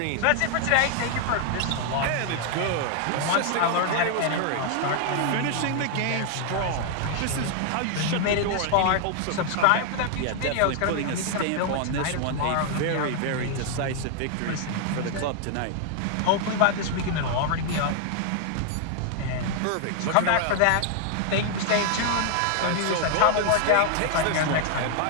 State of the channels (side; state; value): both; different; correlation 0.00